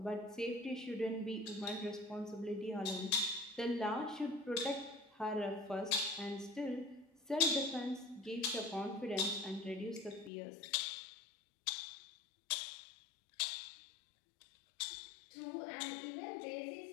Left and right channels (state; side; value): drops out; right; at 10.3 s